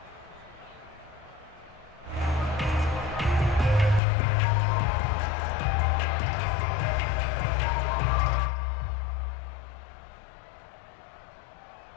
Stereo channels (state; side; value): drops out; right; at 4.0 s